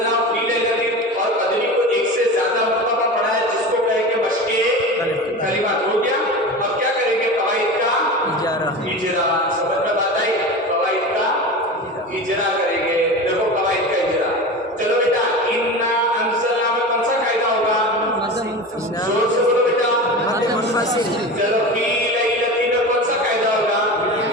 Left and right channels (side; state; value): both; normal; correlation 0.29